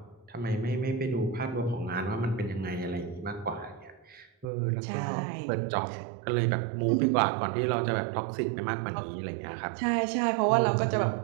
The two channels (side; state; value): left; drops out; at 4.5 s